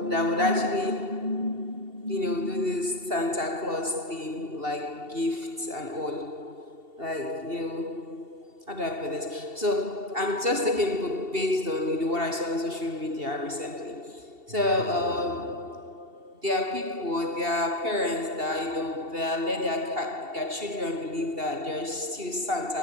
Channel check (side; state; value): left; late; 2.7 ms